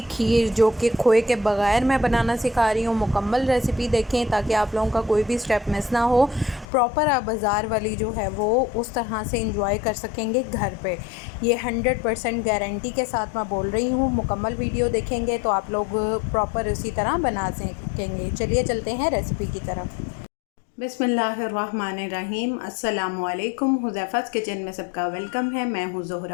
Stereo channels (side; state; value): right; drops out; at 6.7 s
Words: खीर जो कि खोए के बगैर मैं बनाना सिखा रही हूँ, मुकम्मल रेसिपी देखें ताकि आप लोगों का कोई भी स्टेप मिस ना हो। प्रॉपर आप बाज़ार वाली जो है वो उस तरह से इंजॉय कर सकेंगे घर पे। ये 100% गारंटी के साथ मैं बोल रही हूँ। मुकम्मल वीडियो देखेंगे तो आप लोग प्रॉपर उसी तरह बना सकेंगे। चलिए चलते हैं रेसिपी की तरफ। बिस्मिल्लाहिर्रहमानिर्रहीम। अस्सलामुअलैकुम। हुज़ैफ़ा's किचन में सबका वेलकम है। मैं हूँ